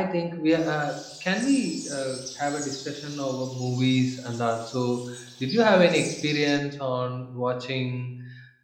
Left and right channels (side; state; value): both; identical; correlation 1.00